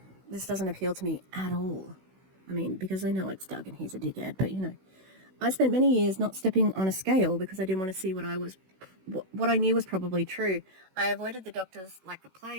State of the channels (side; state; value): left; late; 16 ms